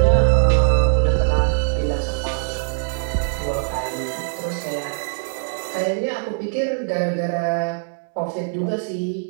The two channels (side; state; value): left; silent; digital silence